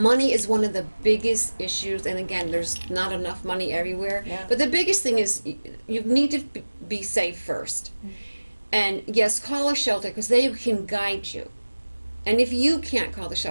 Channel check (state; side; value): inverted; both; correlation -1.00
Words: is one of the biggest issues, and again, there's not enough money everywhere. Yeah. But the biggest thing is you need to be safe first. And yes, call a shelter because they can guide you. And if you can't call the